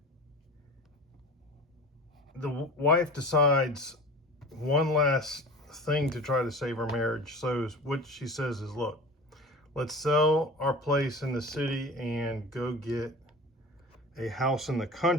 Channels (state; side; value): normal; both; correlation 0.36